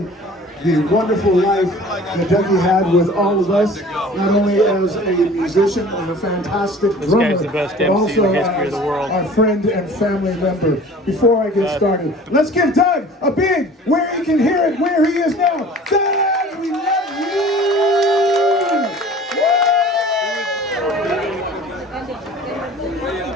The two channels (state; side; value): normal; both; correlation 0.45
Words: the wonderful life that Dougie had with all of us, not only as a musician and a fantastic drummer, the best but MC also in the history of the world. Our friend and family member. Before I get started, let's give Doug a big, where he can hear it, where he is now. Doug, we love you!